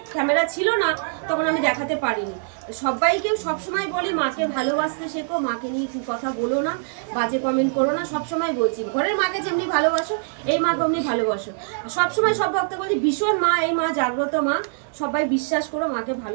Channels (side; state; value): left; silent; 63 dB below the other